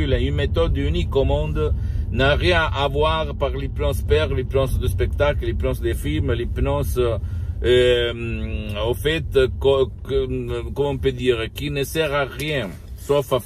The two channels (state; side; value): identical; both; correlation 1.00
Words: une méthode unique au monde, n'a rien à voir par l'hypnose père, l'hypnose de spectacle, l'hypnose des films, l'hypnose, au fait, comment on peut dire, qui ne sert à rien, sauf à